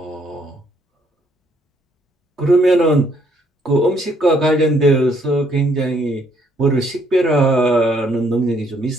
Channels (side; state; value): both; normal; correlation 0.68